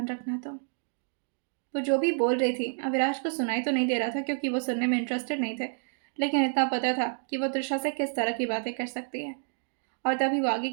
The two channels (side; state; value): left; silent; digital silence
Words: रखना तुम। वो जो भी बोल रही थी अविनाश को सुनाई तो नहीं दे रहा था क्योंकि वो सुनने में इंटरेस्टेड नहीं थे, लेकिन इतना पता था कि वो त्रिशा से किस तरह की बातें कर सकती है। और तभी वो आगे